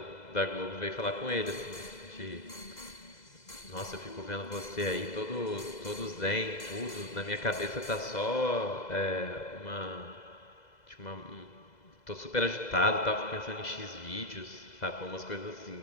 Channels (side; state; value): right; late; 2.0 ms